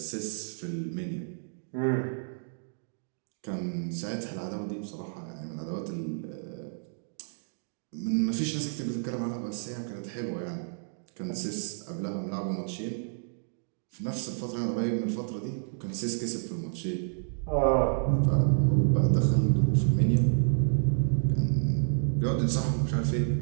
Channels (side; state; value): left; silent; digital silence